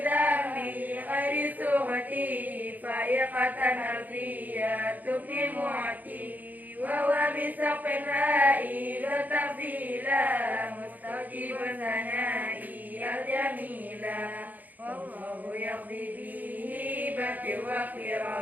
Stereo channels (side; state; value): left; late; 0.082 ms